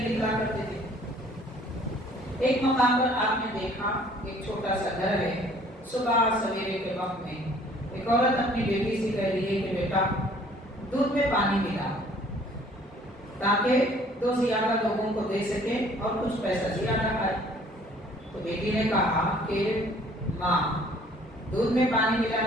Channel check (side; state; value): both; normal; correlation 0.56